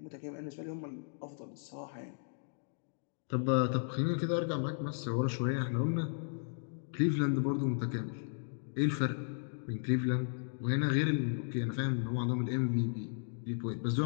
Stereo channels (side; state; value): right; silent; digital silence